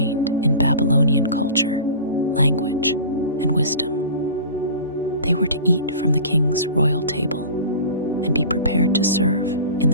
in Babylonian culture, language, and wisdom. They were to eat from the king's royal table and be prepared to serve in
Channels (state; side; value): inverted; both; correlation -0.37